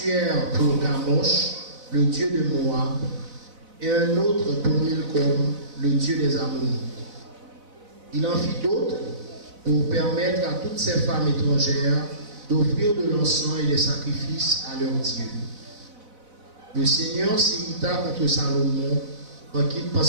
pour Kamosh, le dieu de Moab, et un autre pour Milcom, le dieu des Ammonites. Il en fit d'autres pour permettre à toutes ces femmes étrangères d'offrir de l'encens et des sacrifices à leurs dieux. Le Seigneur s'irrita contre Salomon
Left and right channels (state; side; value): late; left; 4.0 ms